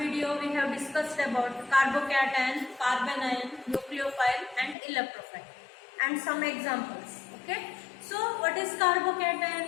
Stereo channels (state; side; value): drops out; right; at 4.8 s